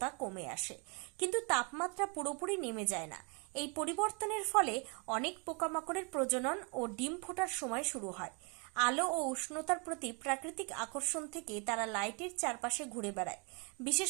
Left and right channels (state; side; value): quieter; left; 34.3 dB